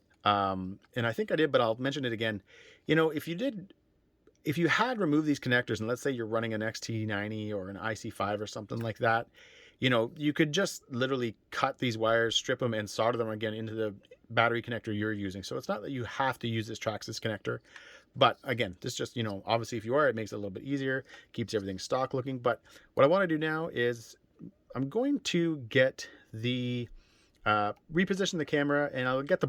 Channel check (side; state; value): both; identical; correlation 1.00